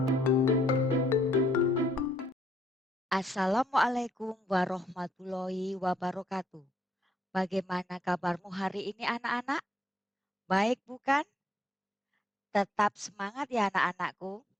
warahmatullahi wabarakatuh. Bagaimana kabarmu hari ini anak-anak? Baik bukan? Tetap semangat ya anak-anakku.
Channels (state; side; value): normal; both; correlation 0.70